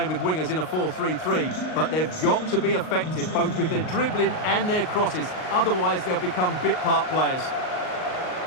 with wingers in a 4-3-3, but they've got to be effective, both with their dribbling and their crosses. Otherwise, they'll become bit-part players.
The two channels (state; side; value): late; right; 38 ms